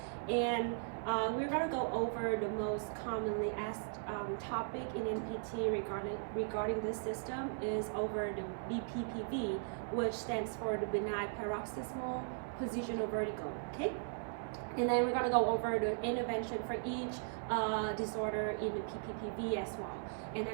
and we're going to go over the most commonly asked topic in NPT regarding this system is over the BPPV, which stands for the benign paroxysmal positional vertigo. Okay, and then we're going to go over the intervention for each disorder in the PPPV as well. And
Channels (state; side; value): silent; left; 52 dB below the other